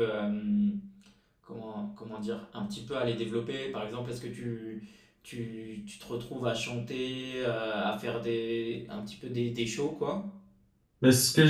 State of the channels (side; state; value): both; identical; correlation 1.00